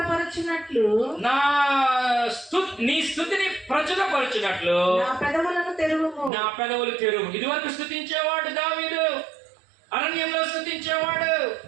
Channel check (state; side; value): drops out; left; at 6.3 s